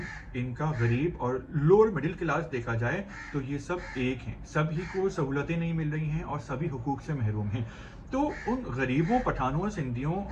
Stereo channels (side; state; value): both; identical; correlation 1.00